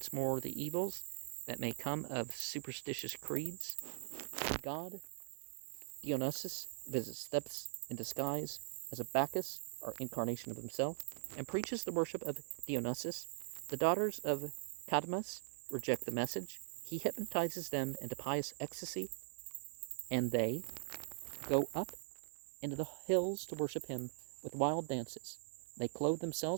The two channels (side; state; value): left; silent; digital silence